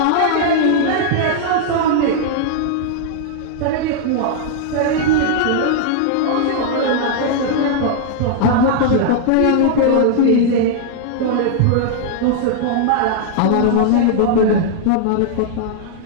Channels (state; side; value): different; both; correlation -0.01